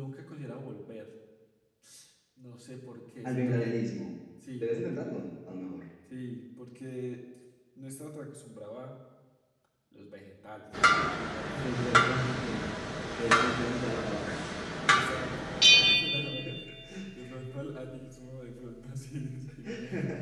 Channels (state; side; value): identical; both; correlation 1.00